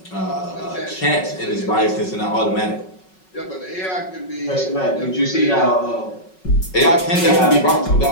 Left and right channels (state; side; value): late; right; 5.4 ms